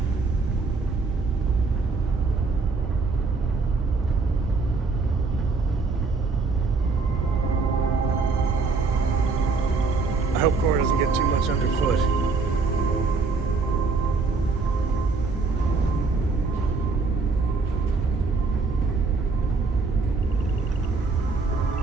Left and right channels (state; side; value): quieter; left; 4.2 dB